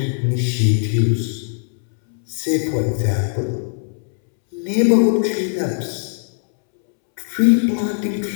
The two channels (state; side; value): silent; right; 66 dB below the other